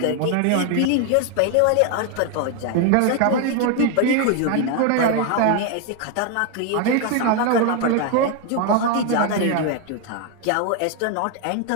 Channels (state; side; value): different; both; correlation 0.01